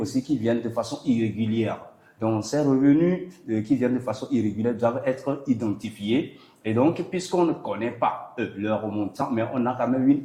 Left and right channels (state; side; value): identical; both; correlation 1.00